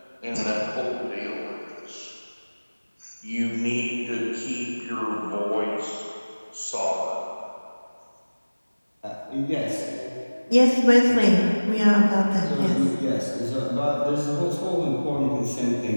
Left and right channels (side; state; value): both; inverted; correlation -1.00